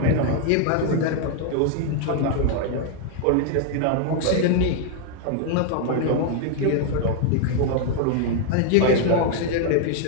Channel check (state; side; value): different; both; correlation 0.00